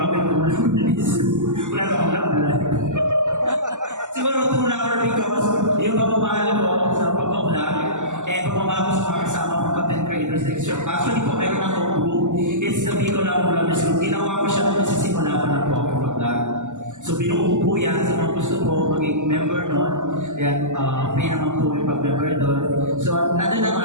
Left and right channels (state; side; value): late; left; 0.85 ms